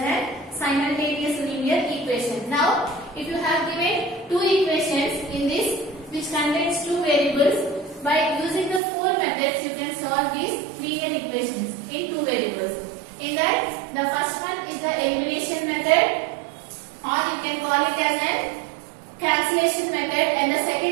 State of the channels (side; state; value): left; drops out; at 8.8 s